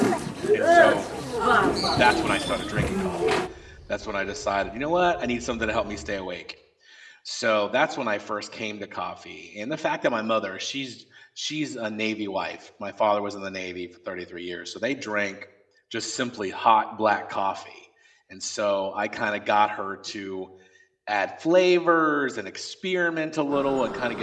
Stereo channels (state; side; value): identical; both; correlation 1.00